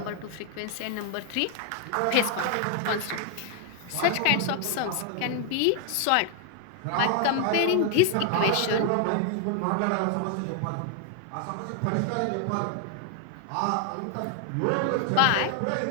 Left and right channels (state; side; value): different; both; correlation 0.00